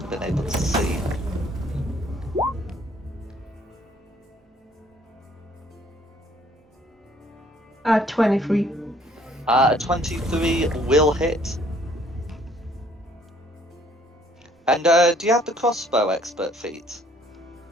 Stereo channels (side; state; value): both; normal; correlation 0.61